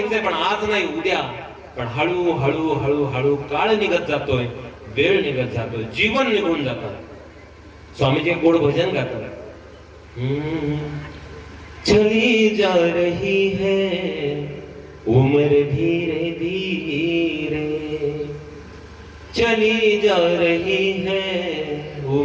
पण आज नाही उद्या. पण हळू हळू हळू हळू काळ निघत जातोय, वेळ निघत जातोय, जीवन निघून जातं. स्वामीजी गोड भजन गातात. चली जा रही है उम्र धीरे धीरे, चली जा रही है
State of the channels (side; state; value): both; identical; correlation 1.00